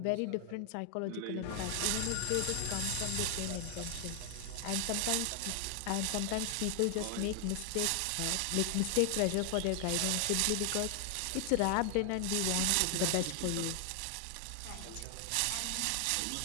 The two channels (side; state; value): both; different; correlation 0.00